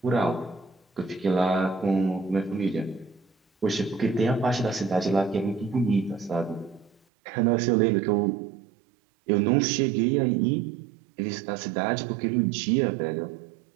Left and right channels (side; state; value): left; drops out; at 7.0 s